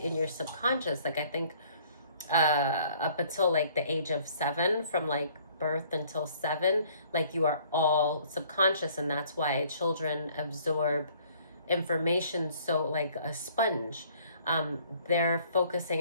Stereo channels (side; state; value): both; inverted; correlation -0.58